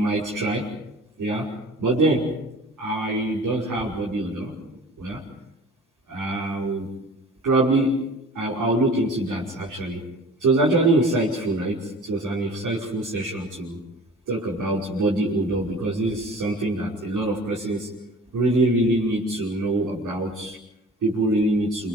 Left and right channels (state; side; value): normal; both; correlation 0.43